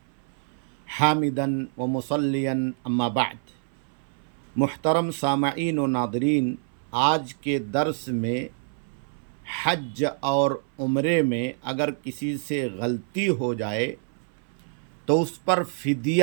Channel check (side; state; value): left; silent; 59 dB below the other